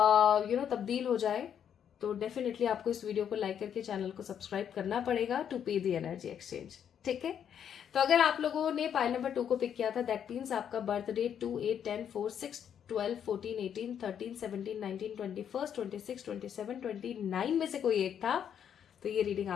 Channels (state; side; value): quieter; right; 8.7 dB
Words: तब्दील हो जाए, तो डेफिनेटली आपको इस वीडियो को लाइक करके चैनल को सब्सक्राइब करना पड़ेगा टू पे द एनर्जी एक्सचेंज, ठीक है। तो अगर आप लोगों ने पाइल नंबर 2 को पिक किया था, दैट मीन्स आपका बर्थ डेट 2, 8, 10, 4, 6 12, 14, 18, 13, 17, 19, 21, 26, 27, 29 में से कोई एक था, तो ये रीडिंग